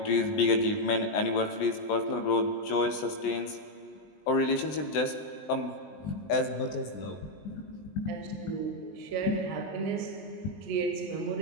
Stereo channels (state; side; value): late; right; 20 ms